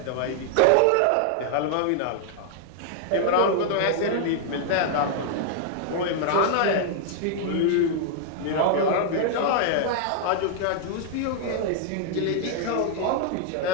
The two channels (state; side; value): different; both; correlation -0.01